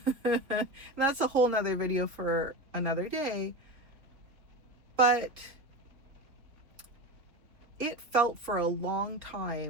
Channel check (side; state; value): left; late; 3.7 ms